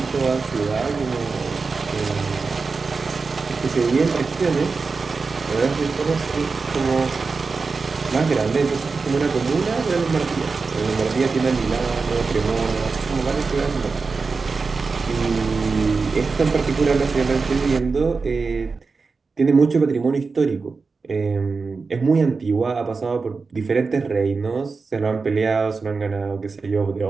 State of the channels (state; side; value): quieter; left; 4.4 dB